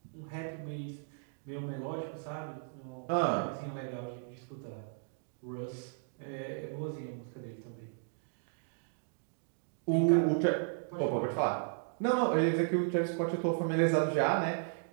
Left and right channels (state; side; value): silent; left; digital silence